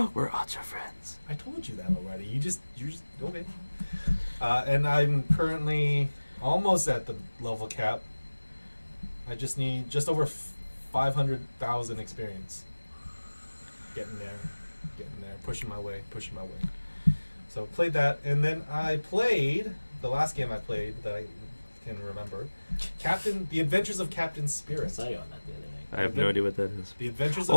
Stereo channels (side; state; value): both; inverted; correlation -1.00